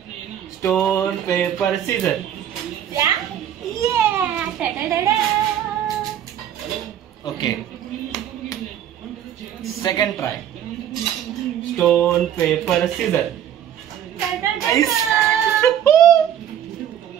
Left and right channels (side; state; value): left; quieter; 10.2 dB